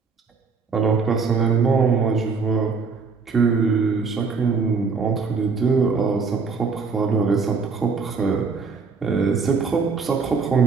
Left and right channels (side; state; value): left; quieter; 4.9 dB